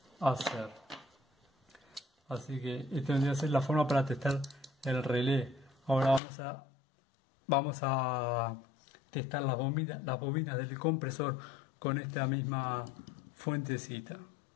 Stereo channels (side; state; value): right; drops out; at 6.2 s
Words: hacer. Así que esta vendría a ser la forma para testar el relé. Ahora vamos a testar las bobinas del compresor con esta misma fuentecita.